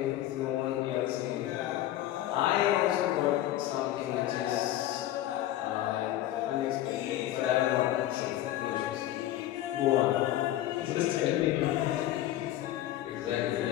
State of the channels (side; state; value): right; quieter; 13.6 dB